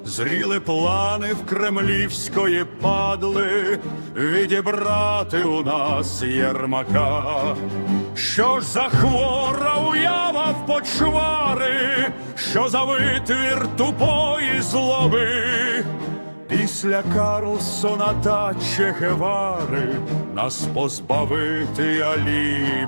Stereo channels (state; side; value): inverted; both; correlation -1.00